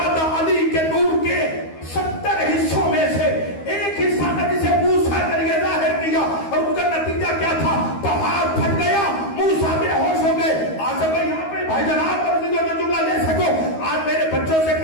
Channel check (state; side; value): late; right; 13 ms